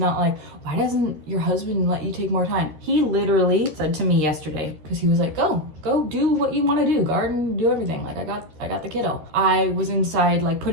like, why doesn't your husband let you take more time? He literally said to me yesterday, because he was like, go do what you want to do, garden, do everything. Like I got the kiddo. I was inside like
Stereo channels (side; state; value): left; late; 13 ms